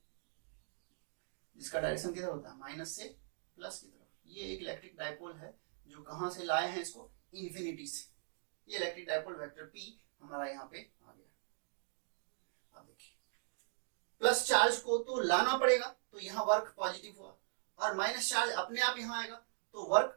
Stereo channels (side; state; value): left; silent; digital silence